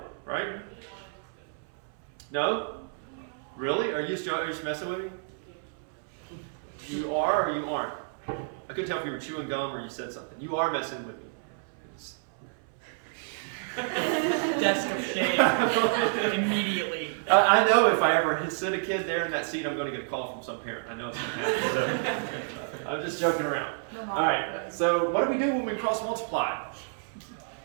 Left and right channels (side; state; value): left; silent; 58 dB below the other